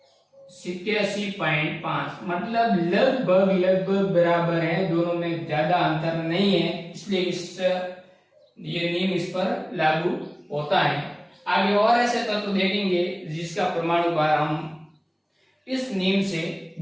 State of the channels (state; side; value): identical; both; correlation 1.00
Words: 87.5, मतलब लगभग बराबर है, दोनों में ज्यादा अंतर नहीं है, इसलिए ये नियम इस पर लागू होता है। आगे और ऐसे तत्व देखेंगे जिसका परमाणु भार हम इस नियम से